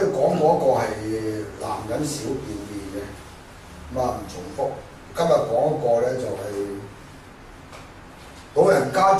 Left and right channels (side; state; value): both; identical; correlation 1.00